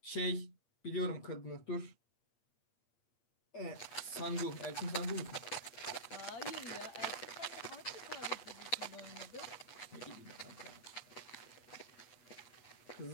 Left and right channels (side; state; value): right; late; 8.5 ms